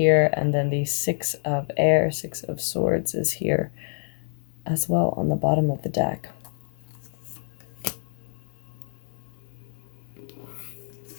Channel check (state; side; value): silent; right; digital silence